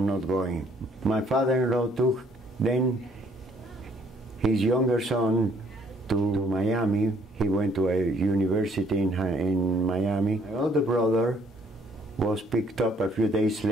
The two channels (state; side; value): normal; both; correlation 0.64